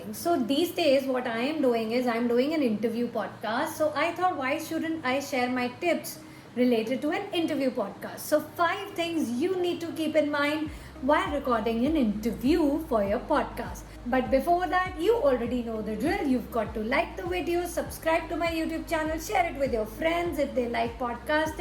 So these days what I am doing is I'm doing an interview podcast. So I thought, why shouldn't I share my tips related to an interview podcast? So 5 things you need to keep in mind while recording an interview for your podcast. But before that, you already know the drill. You've got to like the video, subscribe to my YouTube channel, share it with your friends if they like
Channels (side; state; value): both; identical; correlation 1.00